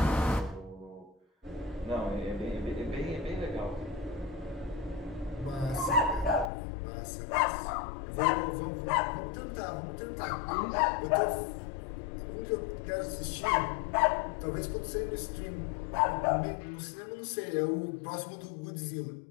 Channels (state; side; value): drops out; right; at 6.5 s